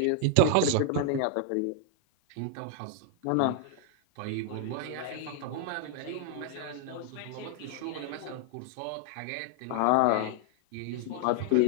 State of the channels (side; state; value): both; different; correlation 0.00